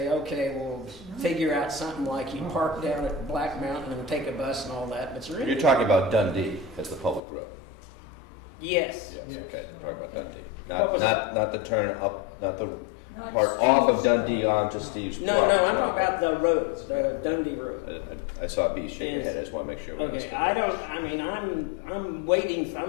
okay, we'll figure out something like you park down at Black Mountain and take a bus and all that, but You're talking about Dundee as the public road. Yes. Yes, okay, you're talking about Dundee. What was Not the turn up, not the Not part off of Dundee onto Steve's. No, I'm talking about the roads, the Dundee Road. I saw B shake your head, I just want to make sure. Okay, I'm waiting,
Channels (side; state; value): right; drops out; at 7.2 s